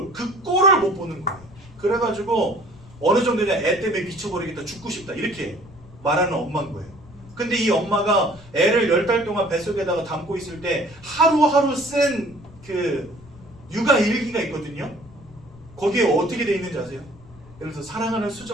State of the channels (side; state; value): left; noise; rumble, 22 dB below the sound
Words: 그 꼴을 못 보는 거예요. 그래가지고 어느 정도냐 애 때문에 미쳐버리겠다 죽고 싶다 이렇게 말하는 엄마인 거예요. 근데 이 엄마가 애를 10달 동안 뱃속에다가 담고 있을 때 하루하루 쓴 그 육아 일기가 있거든요. 거기에 어떻게 돼 있는지 아세요? 예를 들어서 사랑하는